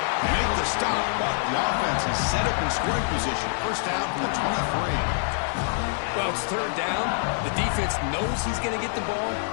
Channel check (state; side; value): silent; right; 61 dB below the other